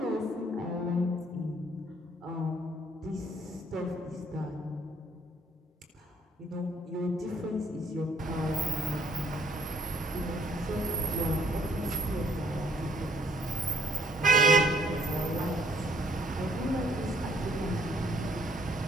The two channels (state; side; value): normal; both; correlation 0.65